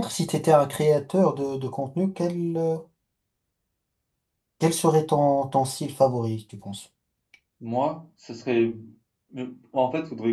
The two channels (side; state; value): both; identical; correlation 1.00